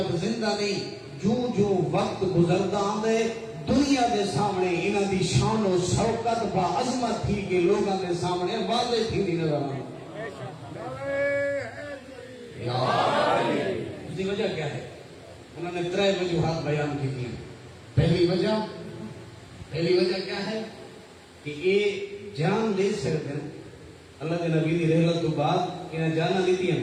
زندہ نہیں جو جو وقت گزرتا آندے دنیا دے سامنے انہاں دی شان و شوکت با عظمت تھی کہ لوگاں دے سامنے واضح تھی نہیں نظر آئی. اس کی وجہ کیا ہے انہوں نے 3 وجوہات بیان کی تھی. پہلی وجہ کیا ہے کہ یہ جان دے سکتے ہیں اللہ کے نبی کی رحلت تو بعد انہیں جانا دیتی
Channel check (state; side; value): identical; both; correlation 1.00